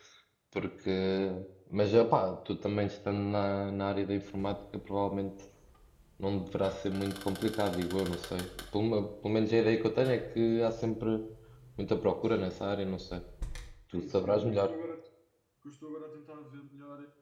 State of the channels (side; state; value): both; identical; correlation 1.00